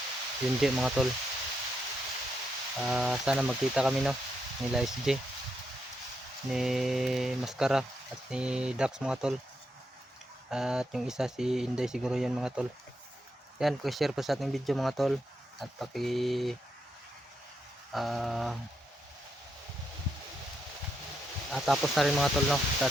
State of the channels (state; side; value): normal; both; correlation 0.81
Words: Junji mga tol. Sana magkita kami, no, nila SJ, ni Mascara at ni Dax mga tol, at yung isa si Inday siguro yan mga tol. Yan, share po sa ating video mga tol, at tapos na rin mga tol, no, sa